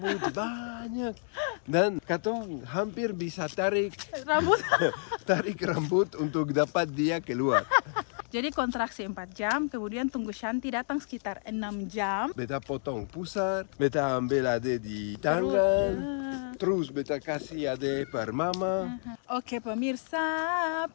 banyak dan katong hampir bisa tarik rambut untuk dapat dia keluar. Jadi kontraksi 4 jam, kemudian tunggu Shanti datang sekitar 6 jam. Beta potong pusar, beta ambil Ade di tangan, terus beta kasih Ade per mama. Oke pemirsa,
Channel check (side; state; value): right; silent; digital silence